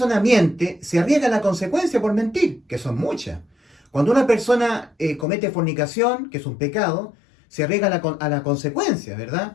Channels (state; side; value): drops out; right; at 5.2 s